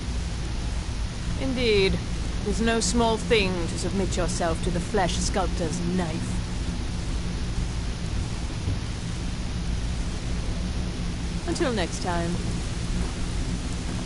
Indeed. It is no small thing to submit yourself to the flesh sculptor's knife. Until next time.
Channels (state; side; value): identical; both; correlation 1.00